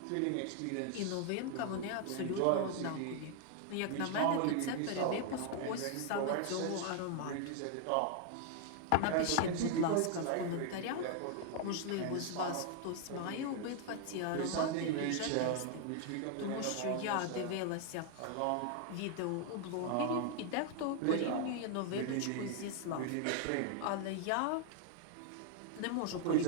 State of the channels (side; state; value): both; different; correlation 0.00